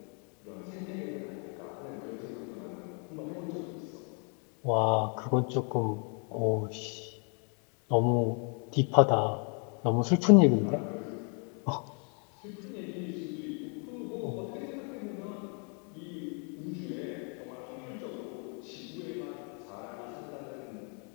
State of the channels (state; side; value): quieter; right; 38.9 dB